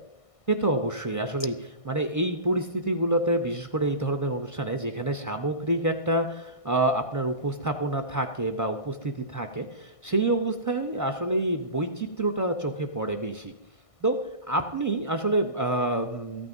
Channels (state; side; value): late; right; 1.6 ms